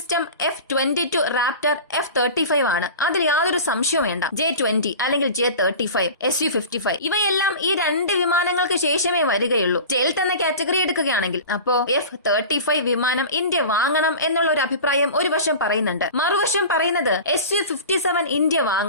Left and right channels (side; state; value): both; inverted; correlation -0.35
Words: F-22 റാപ്റ്റർ F-35 ആണ്. അതിൽ യാതൊരു സംശയവും വേണ്ട. J-20 അല്ലെങ്കിൽ J-35, SU-55 ഇവയെല്ലാം ഈ രണ്ട് വിമാനങ്ങൾക്ക് ശേഷമേ വരികയുള്ളൂ. സ്റ്റെൽത്ത് എന്ന കാറ്റഗറി എടുക്കുകയാണെങ്കിൽ അപ്പോ F-35 വിമാനം ഇന്ത്യ വാങ്ങണം എന്നുള്ള ഒരു അഭിപ്രായം ഒരു വശം പറയുന്നുണ്ട്. മറുവശം പറയുന്നത് SU-57 ഇന്ത്യ